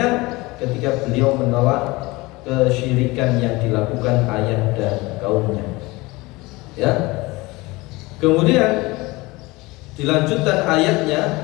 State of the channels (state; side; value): quieter; right; 22.3 dB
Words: ketika beliau menolak kesyirikan yang dilakukan ayah dan kaumnya. Ya. Kemudian dilanjutkan ayatnya,